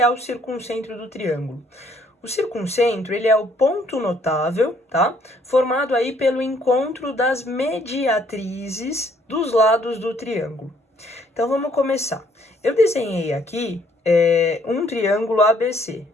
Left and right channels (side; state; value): both; normal; correlation 0.65